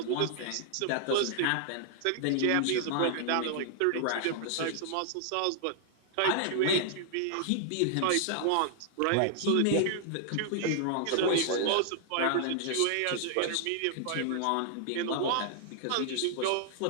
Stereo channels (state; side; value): different; both; correlation -0.01